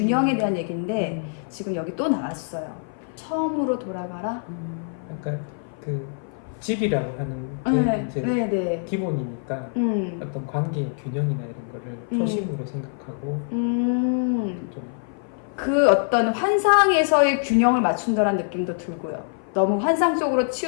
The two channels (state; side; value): silent; right; 55 dB below the other